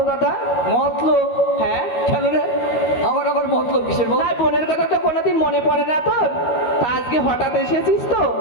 দাদা। মতলব? হ্যাঁ, কেন রে, আমার আবার মতলব কিসের বল? না বোনের কথা তো কোনোদিন মনে পড়ে না তোর? তা আজকে হঠাৎ এসেছিস তো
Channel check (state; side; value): late; right; 13 ms